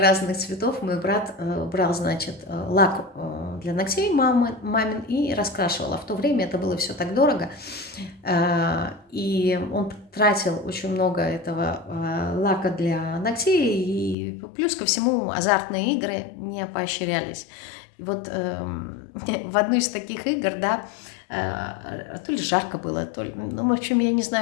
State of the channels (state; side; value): drops out; right; at 14.2 s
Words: цветов, мой брат брал, значит, лак для ногтей мамин и раскрашивал. А в то время это было все так дорого. И он тратил очень много этого лака для ногтей. И плюс ко всему азартные игры не поощрялись. И вот в одну из таких игр, да, то ли жарко было, то ли, ну, в общем, я не